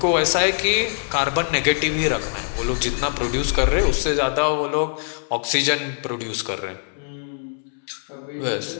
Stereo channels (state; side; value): silent; right; 64 dB below the other